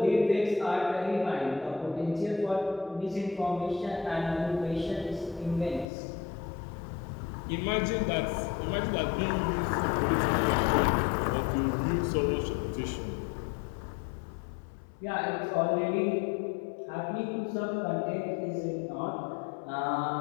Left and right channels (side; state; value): right; drops out; at 5.9 s